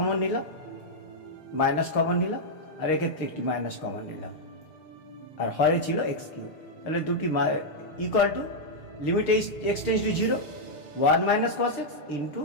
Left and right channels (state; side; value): late; right; 6.5 ms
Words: নিলাম, minus common নিলাম, আর এক্ষেত্রে একটি minus common নিলাম, আর হরে ছিল এক্স কিউব। তাহলে দুটি equal to limit x tends to 0 1 minus cos x into